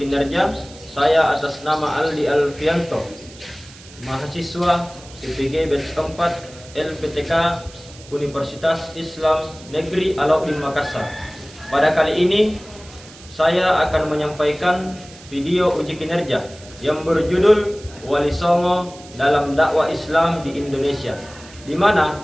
kinerja, saya atas nama Aldi Alfianto, mahasiswa IPG batch 4 LPTK Universitas Islam Negeri Alauddin Makassar. Pada kali ini saya akan menyampaikan video uji kinerja yang berjudul Wali Songo dalam dakwah Islam di Indonesia, di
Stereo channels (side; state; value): right; noise; hiss, 20 dB below the sound